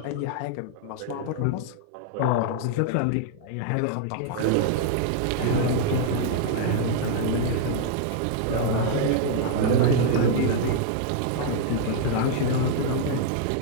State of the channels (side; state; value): both; different; correlation -0.01